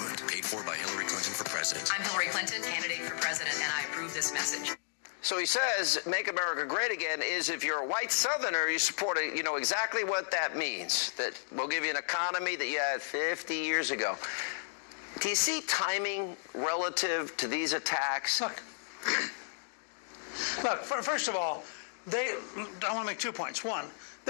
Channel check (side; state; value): right; silent; digital silence